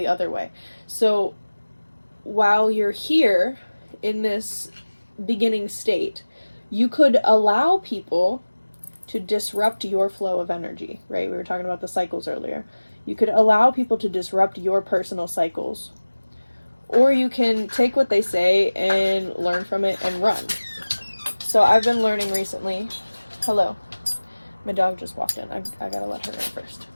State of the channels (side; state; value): both; inverted; correlation -1.00